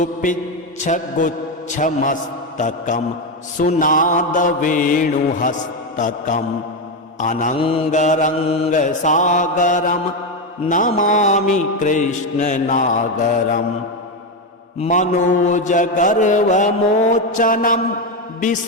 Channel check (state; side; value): normal; both; correlation 0.10